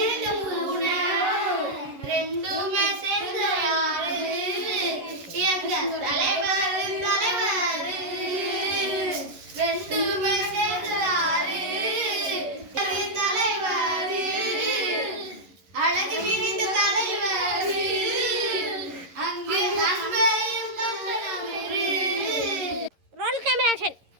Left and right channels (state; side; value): late; left; 11 ms